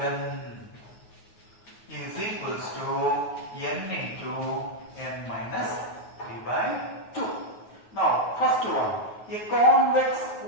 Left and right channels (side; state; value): right; late; 9.4 ms